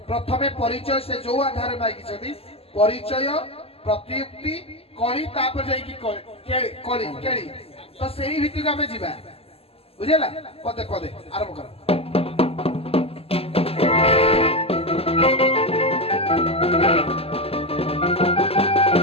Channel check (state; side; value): late; right; 0.28 ms